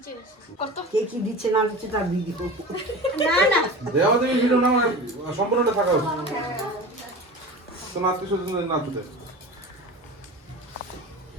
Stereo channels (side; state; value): both; normal; correlation 0.33